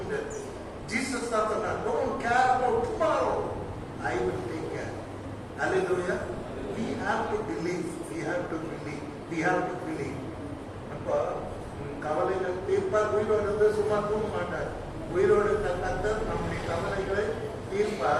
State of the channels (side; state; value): both; identical; correlation 1.00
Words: முடியாது. ஜீசஸ் தான் சொன்னார், don't care about tomorrow, I will take care. Hallelujah. We have to believe, we have to believe, we have to believe. அப்போ கவலைகள் தீர்ப்பார். உயிரோடு இருந்து சும்மா தூங்க மாட்டார். உயிரோடு இருந்த கர்த்தர் நம்முடைய கவலைகளை